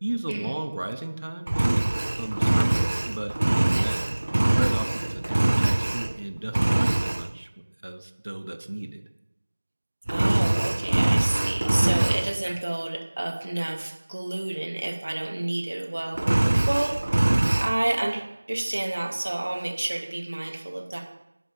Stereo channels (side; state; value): both; inverted; correlation -1.00